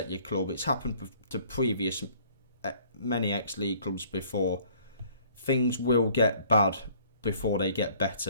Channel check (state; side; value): inverted; both; correlation -0.57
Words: your club. It's happened to previous many ex-league clubs before. Things will get bad before they get